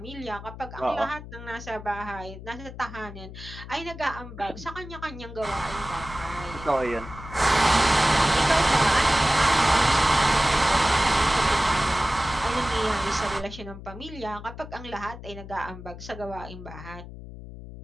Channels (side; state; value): left; noise; hum, 13 dB below the sound